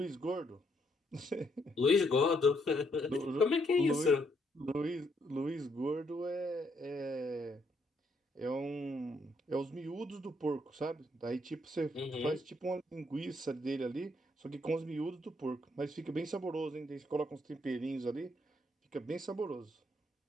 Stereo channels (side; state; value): both; normal; correlation 0.73